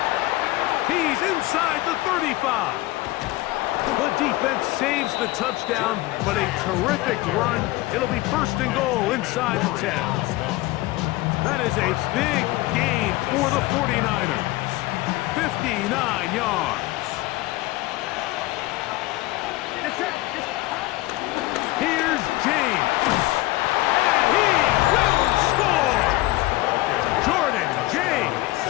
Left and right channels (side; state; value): right; quieter; 19.1 dB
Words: He's inside the 35. The defense saves the touchdown, but a terrific run. It'll be 1st and goal inside the 10. That is a big gain for the 49ers. 59 yards. Here's James. And he will score. Jordan James.